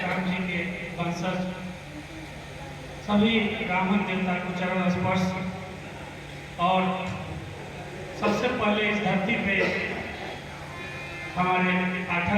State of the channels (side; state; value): both; identical; correlation 1.00